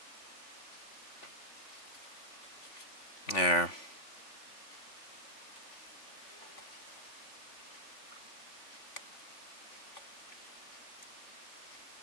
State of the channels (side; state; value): right; late; 3.5 ms